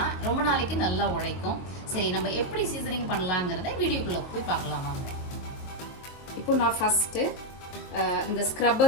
ரொம்ப நாளைக்கு நல்லா உழைக்கும். சரி, நம்ம எப்படி சீசனிங் பண்ணலாங்கிறத வீடியோக்குள்ளே போய் பார்க்கலாம் வாங்க. இப்போ நான் ஃபஸ்ட்டு இந்த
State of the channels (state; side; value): late; right; 23 ms